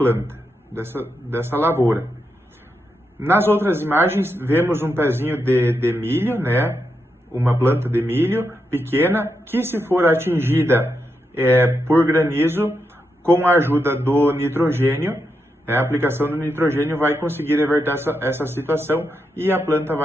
dessa lavoura. Nas outras imagens, vemos um pezinho de milho, uma planta de milho pequena, que se for atingida por granizo, com a ajuda do nitrogênio, a aplicação do nitrogênio vai conseguir reverter essa situação e a planta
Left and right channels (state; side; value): normal; both; correlation 0.85